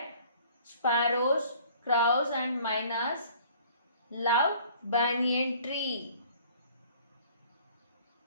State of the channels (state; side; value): inverted; both; correlation -0.53